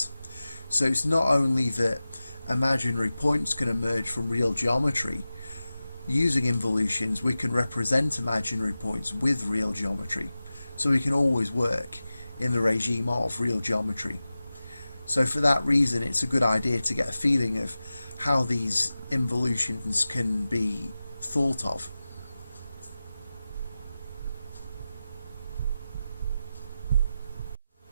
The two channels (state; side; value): inverted; both; correlation -0.95